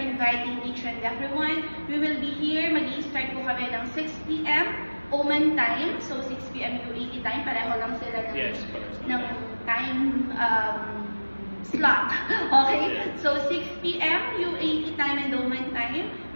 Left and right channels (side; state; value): both; inverted; correlation -1.00